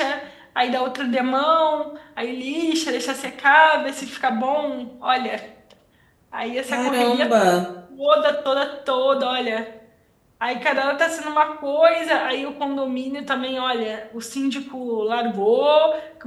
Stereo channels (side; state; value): both; identical; correlation 1.00